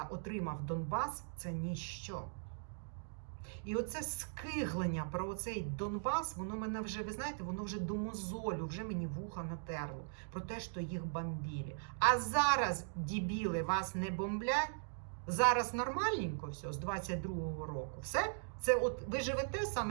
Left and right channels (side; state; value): left; silent; digital silence